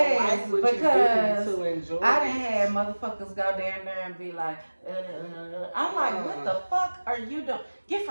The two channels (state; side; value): inverted; both; correlation -1.00